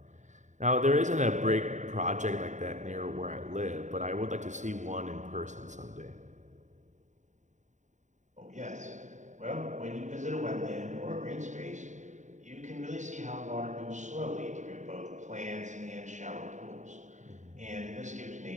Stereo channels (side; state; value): left; late; 0.35 ms